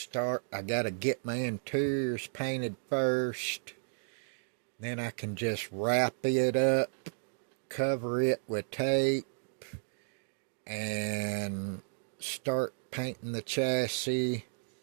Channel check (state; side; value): silent; left; digital silence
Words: I got to get my interiors painted first. Then I can just wrap it up, cover it with tape, and start painting the chassis.